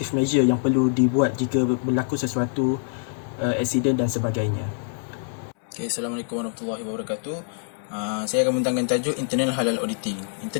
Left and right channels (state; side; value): silent; right; 62 dB below the other